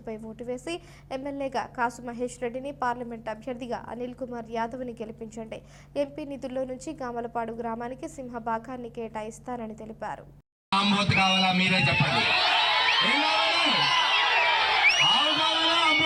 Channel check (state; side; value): identical; both; correlation 1.00